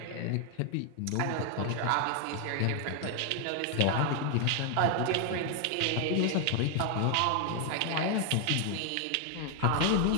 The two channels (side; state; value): both; different; correlation 0.00